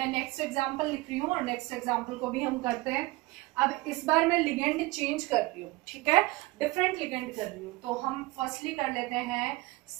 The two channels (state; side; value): quieter; left; 21.1 dB